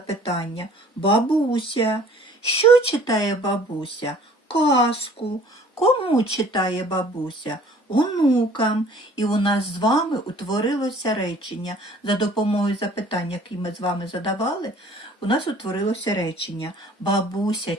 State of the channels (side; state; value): both; normal; correlation 0.52